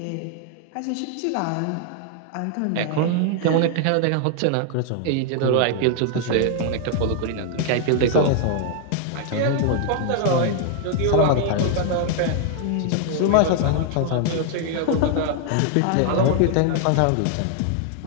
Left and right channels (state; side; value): different; both; correlation 0.00